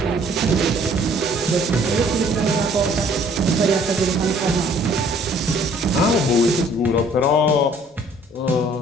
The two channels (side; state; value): both; normal; correlation 0.58